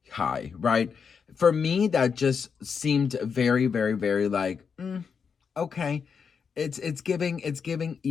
high, right? For me, that just seemed very, very, very like, okay. It's giving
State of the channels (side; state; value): right; quieter; 6.2 dB